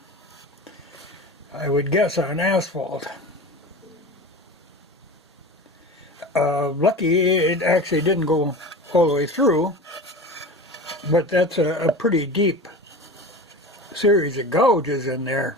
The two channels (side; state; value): both; normal; correlation 0.32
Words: I would guess, on asphalt. Lucky it actually didn't go all the way through, but that's a pretty deep series of gouges in there.